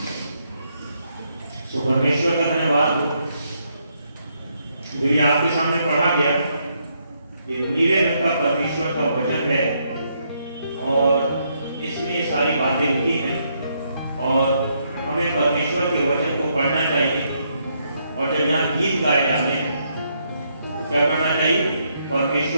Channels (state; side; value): inverted; both; correlation -0.76